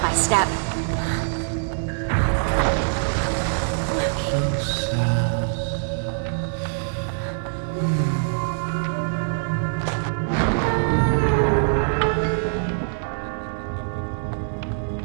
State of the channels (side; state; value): left; silent; digital silence